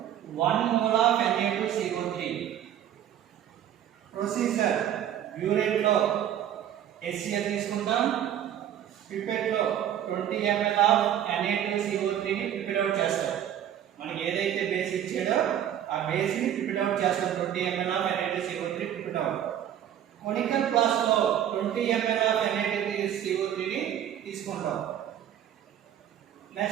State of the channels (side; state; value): left; quieter; 10.6 dB